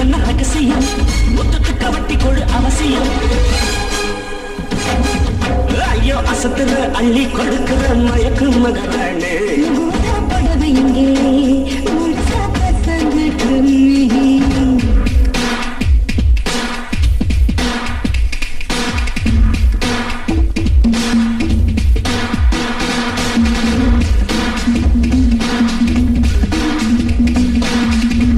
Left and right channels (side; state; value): both; identical; correlation 1.00